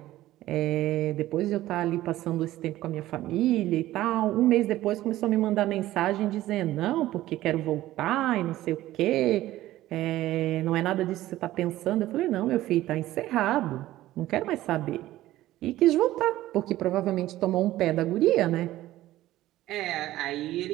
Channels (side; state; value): left; quieter; 15.3 dB